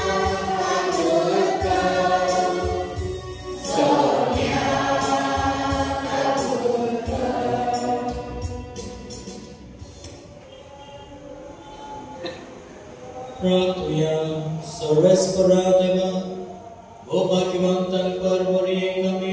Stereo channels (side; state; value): both; identical; correlation 1.00